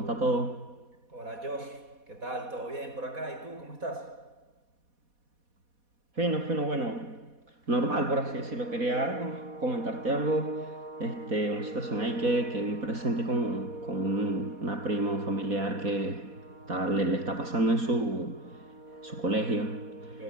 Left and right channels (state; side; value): late; left; 4.1 ms